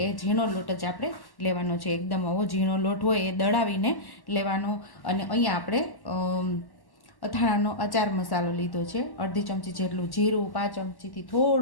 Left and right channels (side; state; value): right; late; 1.1 ms